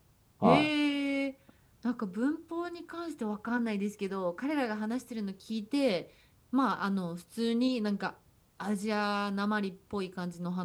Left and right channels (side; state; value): both; identical; correlation 1.00